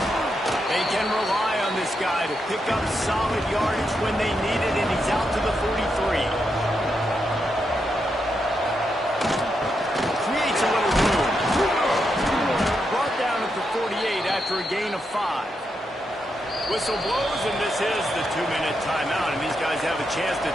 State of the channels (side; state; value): both; normal; correlation 0.83